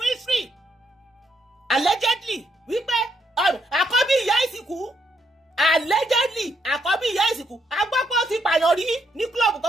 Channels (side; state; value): both; normal; correlation 0.75